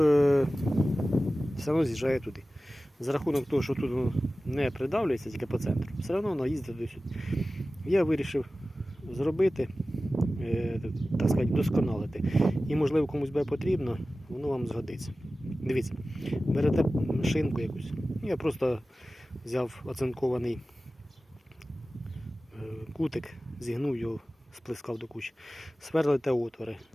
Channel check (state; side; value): normal; both; correlation 0.96